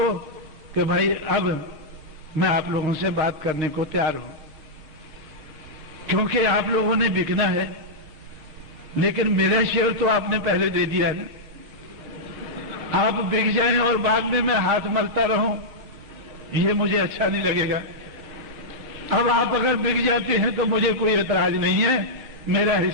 कि भाई अब मैं आप लोगों से बात करने को तैयार हूं, क्योंकि आप लोगों ने बिकना है, लेकिन मेरा शेयर तो आपने पहले दे दिया है ना। आप बिक जाएं और बाद में मैं हाथ मलता रहूं, ये मुझे अच्छा नहीं लगेगा। अब आप अगर बिक जाते हैं तो मुझे कोई एतराज नहीं है, मेरा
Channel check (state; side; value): late; left; 6.5 ms